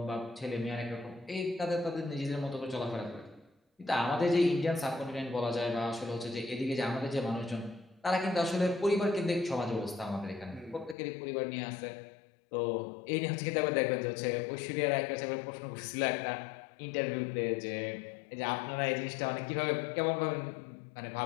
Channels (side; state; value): right; drops out; at 11.0 s